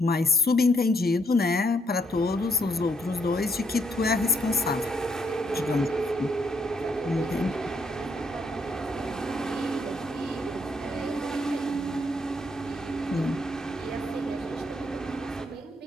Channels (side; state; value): both; normal; correlation 0.73